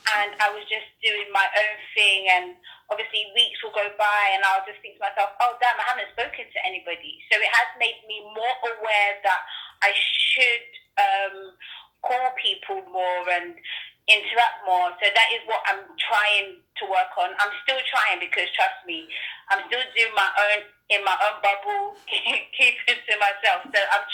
I was just doing my own thing, and obviously weeks will go by and I'll just think to myself, oh damn, I haven't spoken to anybody. So it has made me more aware that I should call people more and interact more. So that is what I'm trying to work on. I'm still trying, because trust me, I'm still doing my own in my own bubble, keeping to myself. So I'm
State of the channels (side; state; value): both; identical; correlation 1.00